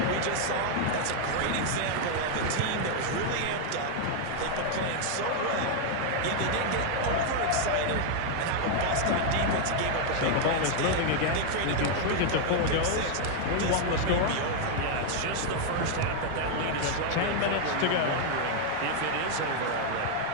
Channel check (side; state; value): both; different; correlation 0.00